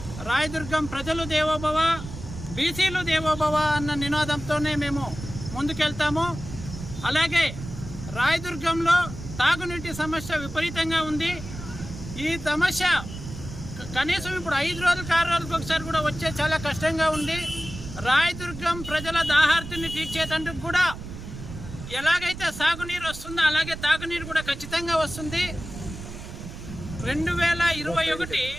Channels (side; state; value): right; noise; rumble, 11 dB below the sound